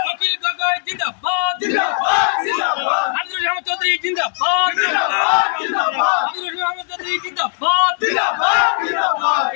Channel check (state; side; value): silent; right; digital silence